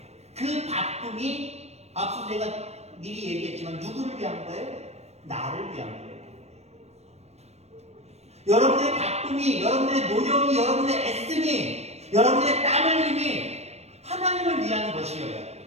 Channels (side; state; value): left; late; 0.31 ms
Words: 그 바쁨이 앞서 제가 미리 얘기했지만 누구를 위한 거예요? 나를 위한 거예요. 여러분들의 바쁨이, 여러분들의 노력이, 여러분들의 애씀이, 여러분들의 땀 흘림이 하나님을 위한 것이어야 돼요.